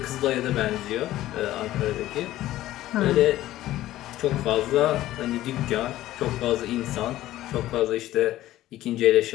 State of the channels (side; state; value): right; quieter; 14.8 dB